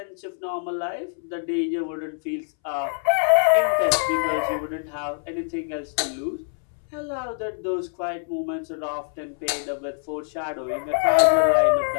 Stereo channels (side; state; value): right; silent; 62 dB below the other